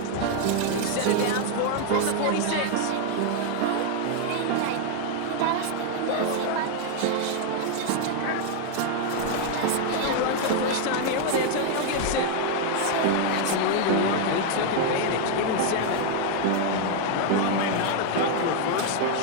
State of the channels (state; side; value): different; both; correlation 0.01